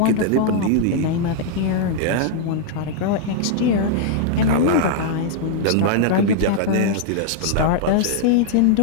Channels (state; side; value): different; both; correlation -0.01